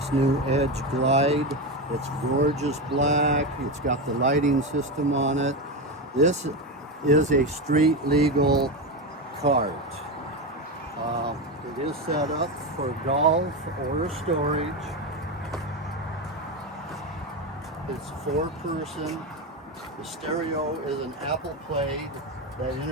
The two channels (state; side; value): normal; both; correlation 0.15